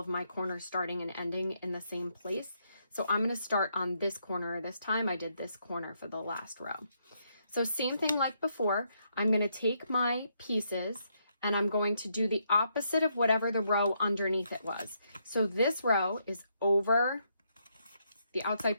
my corners starting and ending in the same place. So I'm going to start on this corner this time. I did this corner for the last row. So same thing like before, I'm going to take my pieces and I'm going to do the opposite of whatever the row underneath it was. So this row is over, the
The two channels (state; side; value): inverted; both; correlation -0.76